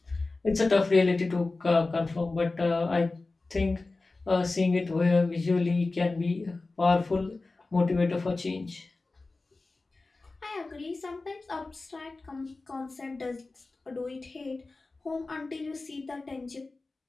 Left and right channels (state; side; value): quieter; right; 3.4 dB